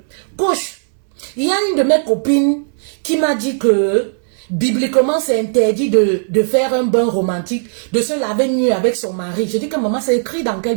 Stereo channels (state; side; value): silent; left; digital silence